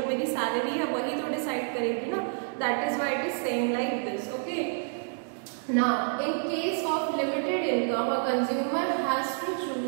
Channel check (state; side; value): silent; left; digital silence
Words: मेरी सैलरी है वही तो डिसाइड करेगी ना. That is why it is saying like this. Okay. Now, in case of limited income, a consumer has to